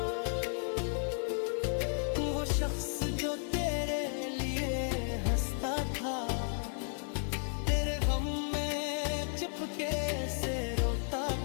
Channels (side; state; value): right; silent; 55 dB below the other